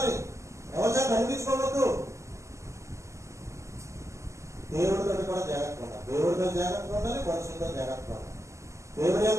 ఎవరి చేత అనిపించుకోవద్దు. దేవుడితో కూడా జాగ్రత్తగా ఉండాలి, దేవుడితో జాగ్రత్తగా ఉండాలి, మనుషులతో జాగ్రత్తగా ఉండాలి. దేవుడి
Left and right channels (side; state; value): left; late; 0.14 ms